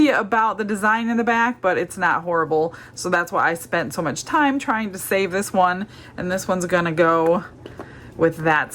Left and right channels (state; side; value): identical; both; correlation 1.00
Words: about the design in the back, but it's not horrible. So that's why I spent so much time trying to save this one. And this one's gonna go with that